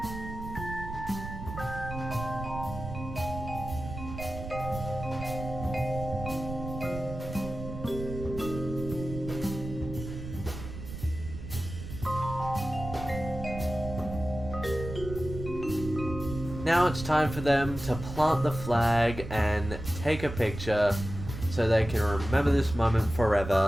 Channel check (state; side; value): noise; right; rumble, 9 dB below the sound